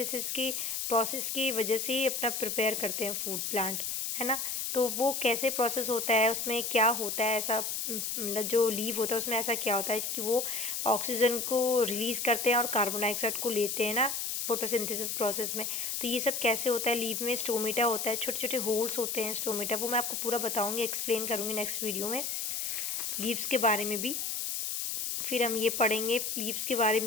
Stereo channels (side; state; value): left; noise; hiss, 2 dB below the sound